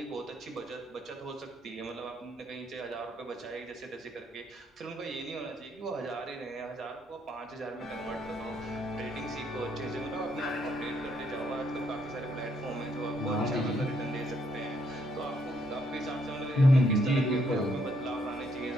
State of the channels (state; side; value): normal; both; correlation 0.72